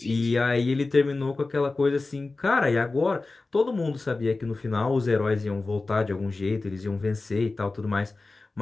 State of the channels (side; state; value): right; quieter; 3.5 dB